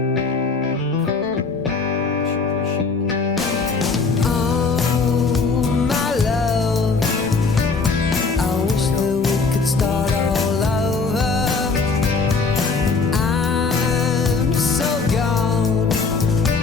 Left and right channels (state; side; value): quieter; right; 4.4 dB